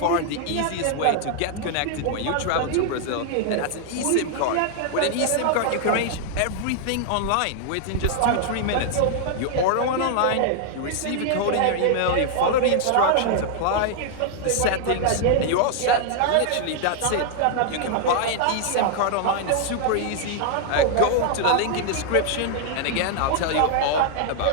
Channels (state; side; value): different; both; correlation 0.00